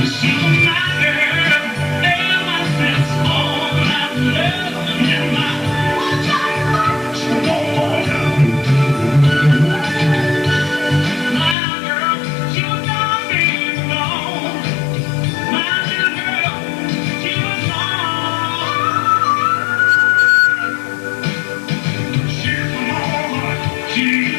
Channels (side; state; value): right; drops out; at 11.6 s